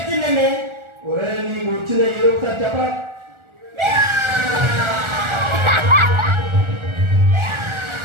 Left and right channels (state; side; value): late; left; 1.4 ms